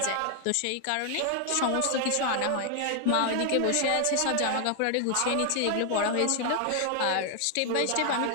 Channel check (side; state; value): both; different; correlation 0.00